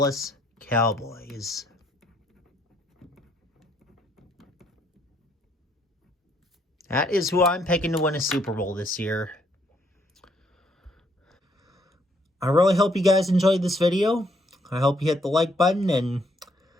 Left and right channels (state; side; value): normal; both; correlation 0.69